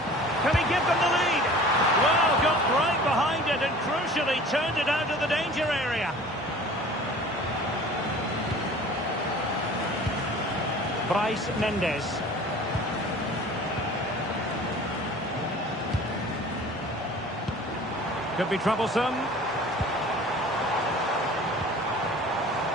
he give them the lead? Well, got right behind it and crucially turned it out of the danger area. Bryce Mendes. Could be troublesome.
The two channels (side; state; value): both; normal; correlation 0.44